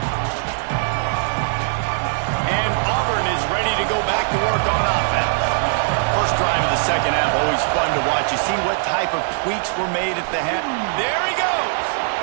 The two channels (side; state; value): left; silent; 65 dB below the other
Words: And Auburn is ready to go back to work on offense. First drive of the second half, always fun to watch. You see what type of tweaks were made at the half. There he goes.